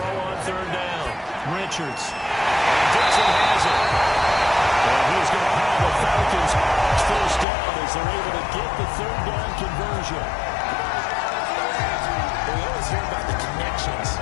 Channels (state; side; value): drops out; right; at 7.5 s